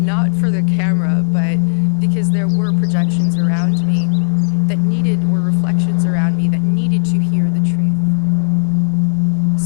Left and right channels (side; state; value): right; silent; digital silence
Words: for the camera, but reflections around me that needed to hear the truth.